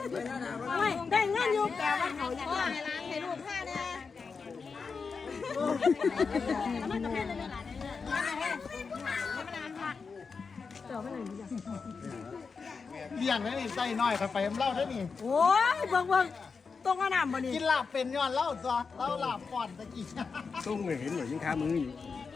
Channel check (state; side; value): quieter; right; 5.1 dB